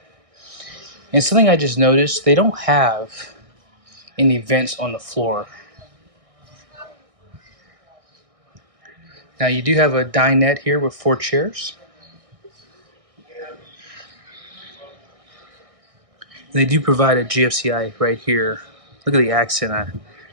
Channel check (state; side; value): late; left; 1.6 ms